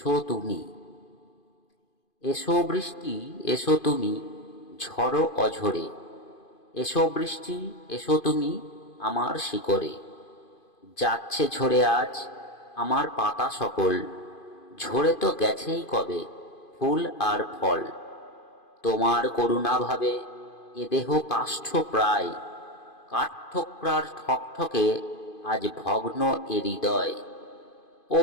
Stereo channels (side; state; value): right; late; 2.5 ms